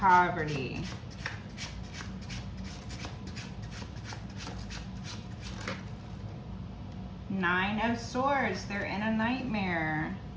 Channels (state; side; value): identical; both; correlation 1.00